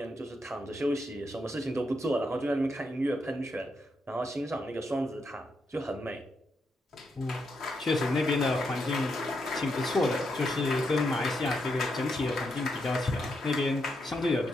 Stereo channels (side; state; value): both; normal; correlation 0.81